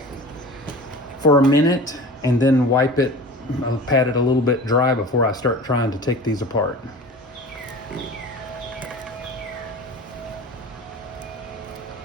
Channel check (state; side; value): normal; both; correlation 0.37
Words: for a minute and then wipe it. I'll pat it a little bit dry before I start trying to take these apart.